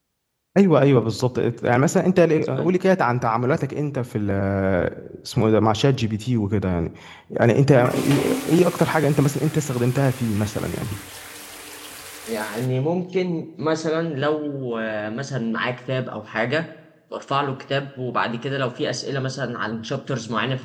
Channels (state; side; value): identical; both; correlation 1.00